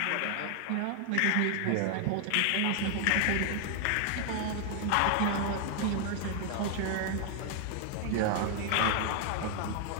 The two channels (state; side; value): different; both; correlation 0.00